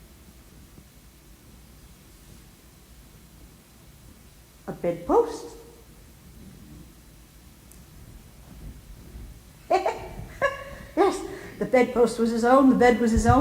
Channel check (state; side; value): identical; both; correlation 1.00